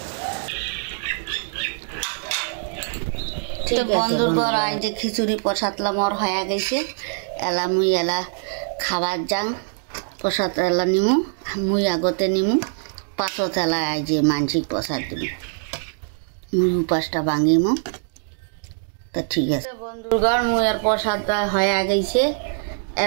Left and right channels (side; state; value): left; silent; digital silence